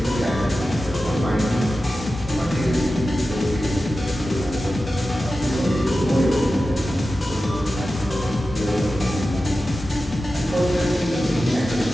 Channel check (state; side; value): normal; both; correlation 0.93